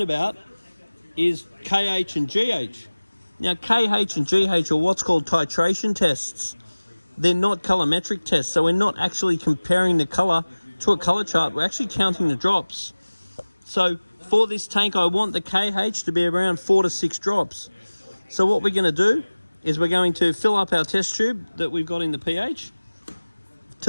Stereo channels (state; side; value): inverted; both; correlation -1.00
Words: about is KH and GH. Now KH and GH are what's called titration tests. They're not colorimetric tests, so we're not actually comparing the color to a color chart. We're actually counting the drops. So for this tank, I want the KH to be around 4 to 6 drops. So what we're going to do is we're going to fill up our test tube that we've got in the pH